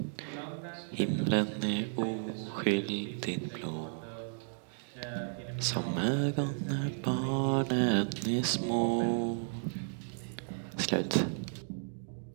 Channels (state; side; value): silent; left; digital silence